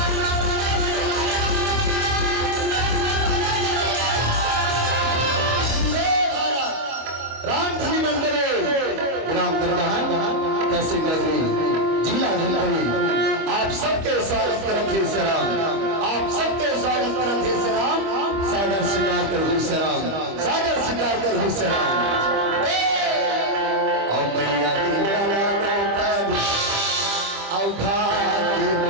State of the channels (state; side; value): late; left; 25 ms